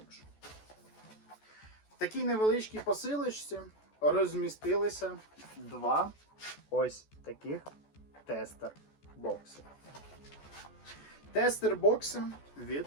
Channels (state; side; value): late; right; 14 ms